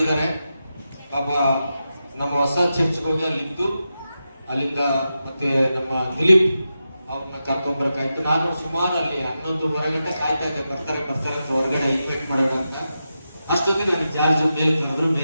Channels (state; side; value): inverted; both; correlation -0.90